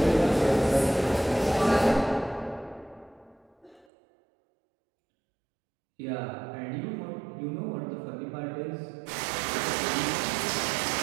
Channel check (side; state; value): left; drops out; at 3.9 s